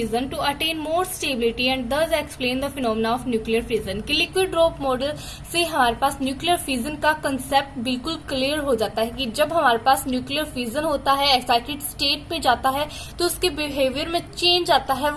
to attain more stability and thus explain the phenomena of nuclear fission. कि liquid drop model से हमारे पास nuclear fission का concept बिल्कुल clear हो जाता है कि जब हमारे पास न्यूक्लियर फिजन होता है, एक्साइटेड स्टेट पे जाता है, तो उसके बिहेवियर में चेंज आता है,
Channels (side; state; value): both; identical; correlation 1.00